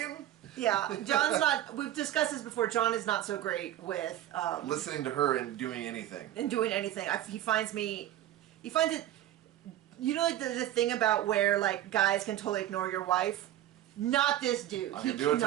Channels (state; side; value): quieter; left; 12.9 dB